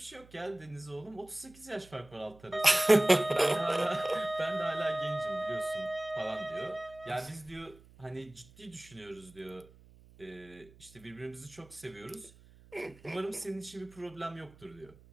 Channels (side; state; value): right; noise; hum, 24 dB below the sound